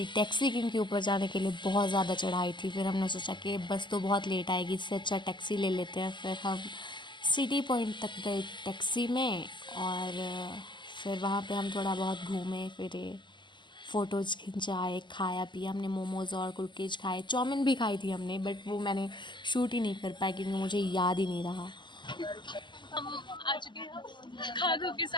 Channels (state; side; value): late; right; 0.22 ms